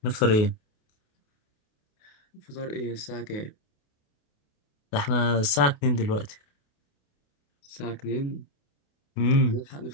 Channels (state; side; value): late; right; 28 ms